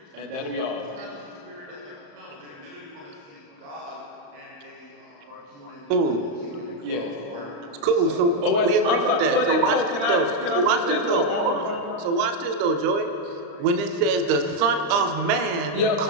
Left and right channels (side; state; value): left; late; 35 ms